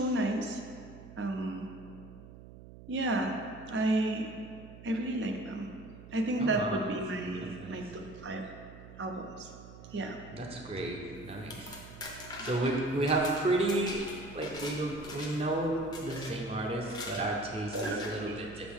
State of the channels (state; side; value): noise; right; hum, 16 dB below the sound